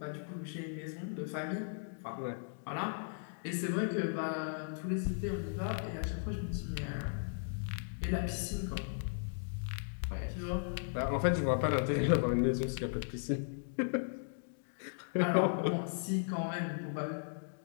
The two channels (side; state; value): right; silent; digital silence